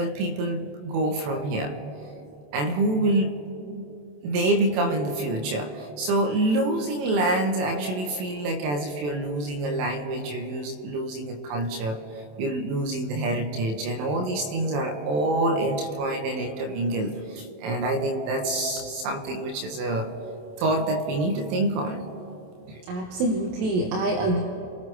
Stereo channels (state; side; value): late; left; 27 ms